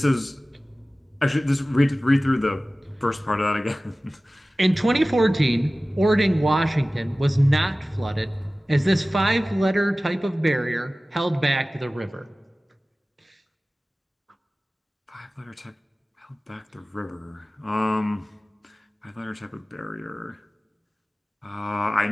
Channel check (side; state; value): both; normal; correlation 0.97